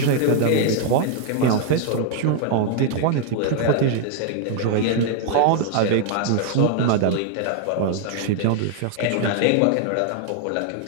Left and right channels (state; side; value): different; both; correlation 0.00